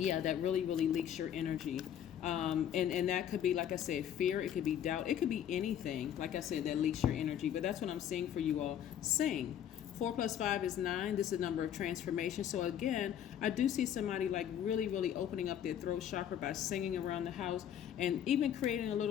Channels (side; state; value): right; quieter; 9.9 dB